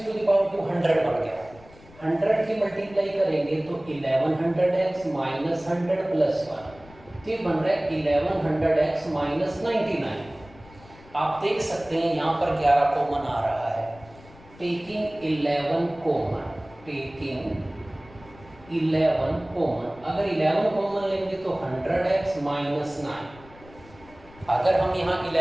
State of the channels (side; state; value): left; noise; rumble, 23 dB below the sound